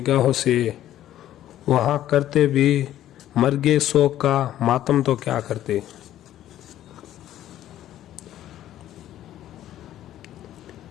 से, वहाँ करते भी मर्गे शोक का मातम तो क्या करते।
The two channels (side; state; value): right; quieter; 12.6 dB